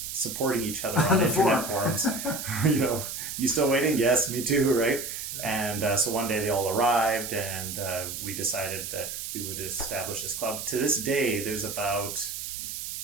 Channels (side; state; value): right; noise; hiss, 6 dB below the sound